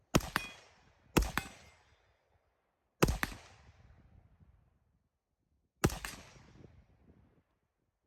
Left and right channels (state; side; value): identical; both; correlation 1.00